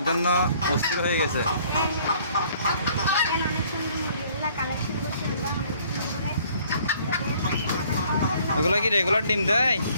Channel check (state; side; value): inverted; both; correlation -0.59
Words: জন্য অস্থির হয়ে গেছে। ওগুলো কি রেগুলার ডিম দেয়?